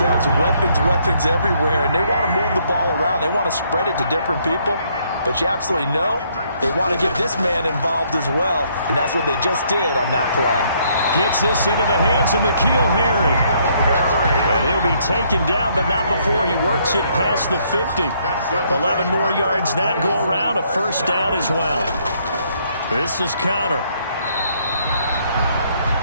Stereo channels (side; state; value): both; inverted; correlation -0.69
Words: weapons everywhere, and they want to move the ball around. They want to spread it to different people, but you absolutely know they want to get this man involved as well, and that's what they just did on that play. Gets this into the hands of N'Keal Harry. And he'll be taken down, but not before he works it past the 50. 11 more yards that go around, a first down as well. This is Connor.